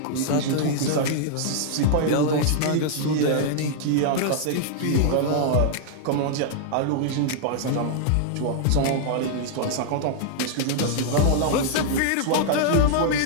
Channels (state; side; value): different; both; correlation -0.01